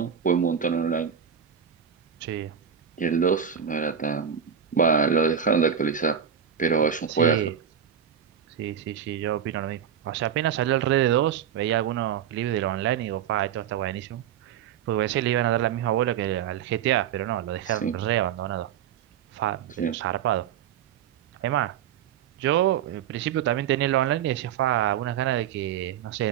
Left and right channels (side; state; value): left; quieter; 8.5 dB